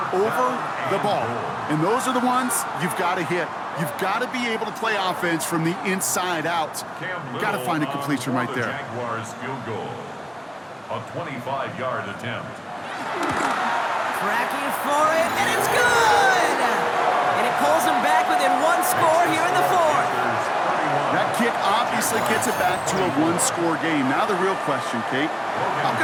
over the ball. And those are the ones you've got to hit. You've got to be able to play offense from the inside out. Got to find a completion right there. Jaguars field goal. A 25-yard attempt. Tracking for it, and it's good! And it pulls them back within 1 score here in the 4th. That kick obviously gets it back to a 1-score game. Now the real question, Kate, how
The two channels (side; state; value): both; identical; correlation 1.00